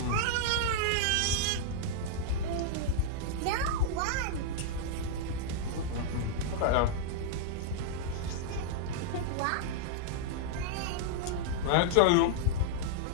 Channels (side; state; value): both; different; correlation -0.01